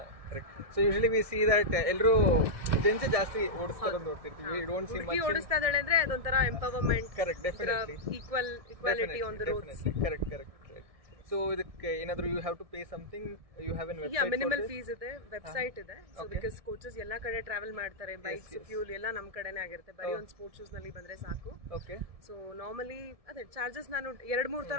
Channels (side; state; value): left; late; 1.7 ms